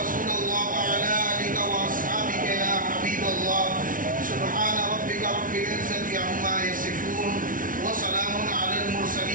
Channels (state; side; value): late; left; 0.39 ms